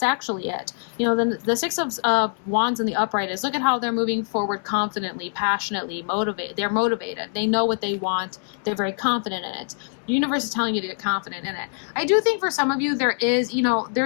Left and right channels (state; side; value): silent; right; 60 dB below the other